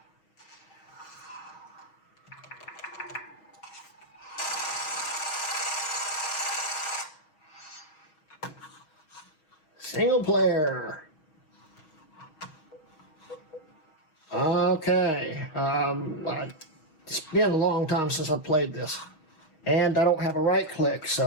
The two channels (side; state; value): right; late; 6.3 ms